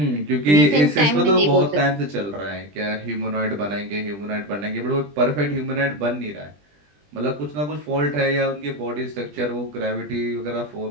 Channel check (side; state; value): left; late; 20 ms